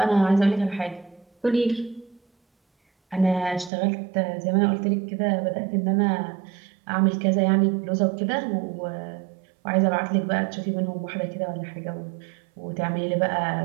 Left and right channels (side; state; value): left; drops out; at 3.7 s